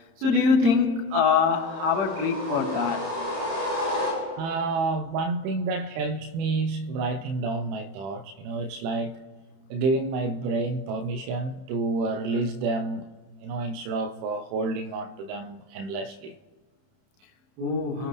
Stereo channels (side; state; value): left; late; 31 ms